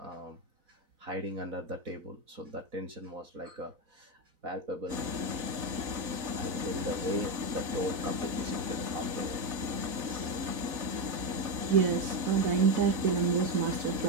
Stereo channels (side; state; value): left; late; 4.0 ms